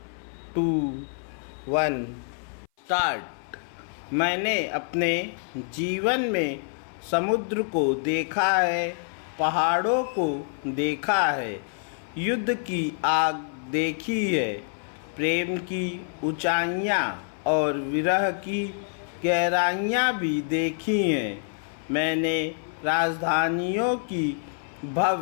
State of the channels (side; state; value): right; silent; 57 dB below the other